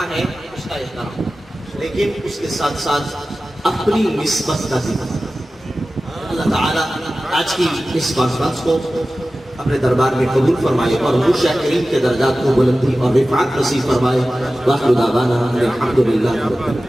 ہے اس کا احترام، لیکن اس کے ساتھ ساتھ اپنی نسبت کا ذکر۔ اللہ تعالیٰ آج کی اس کانفرنس کو اپنے دربار میں قبول فرمائے اور وہ شاکرین کے درجات کو بلندی اور رفعت نصیب فرمائے۔ وآخر دعوانا الحمدللہ رب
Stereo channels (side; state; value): both; normal; correlation 0.95